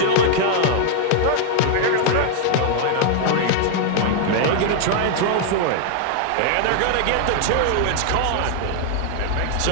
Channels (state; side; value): different; both; correlation 0.00